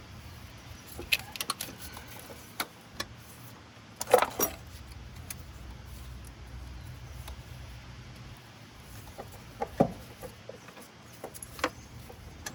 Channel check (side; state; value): both; identical; correlation 1.00